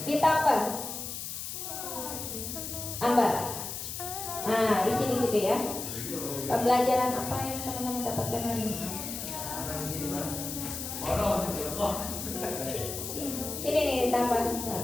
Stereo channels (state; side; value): noise; left; hiss, 6 dB below the sound